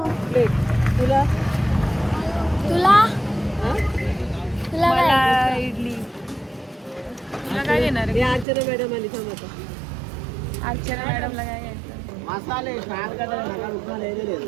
तुला तुला मला इडली. तुला काय देणार आहे? अर्चना मॅडम आली थांब आता. अर्चना मॅडमला काय घ्यायचं? मसाले फ्राय करता नका उठवा लेले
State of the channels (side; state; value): left; drops out; at 8.5 s